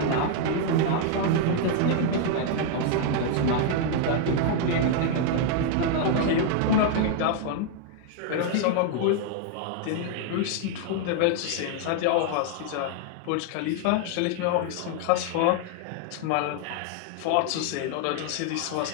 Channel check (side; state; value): both; different; correlation 0.00